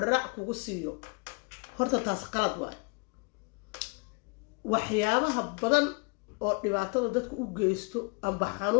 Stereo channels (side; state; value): right; quieter; 32.2 dB